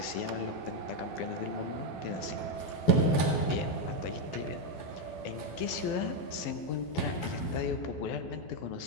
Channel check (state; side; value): late; right; 12 ms